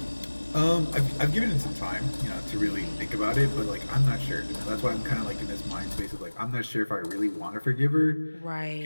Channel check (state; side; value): inverted; both; correlation -1.00